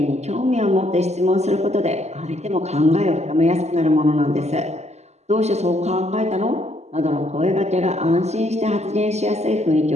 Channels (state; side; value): late; left; 0.32 ms